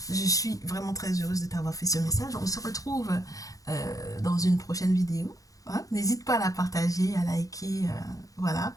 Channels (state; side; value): late; right; 0.17 ms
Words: je suis vraiment très heureuse de t'avoir fait ce message. On se retrouve dans une prochaine vidéo. Hein. N'hésite pas à la partager, à liker. Voilà.